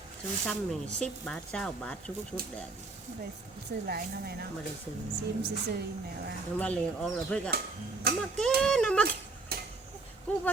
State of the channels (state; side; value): quieter; left; 3.6 dB